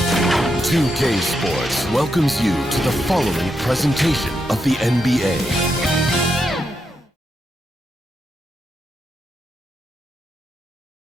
2K Sports welcomes you to the following presentation of the NBA.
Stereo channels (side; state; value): both; normal; correlation 0.83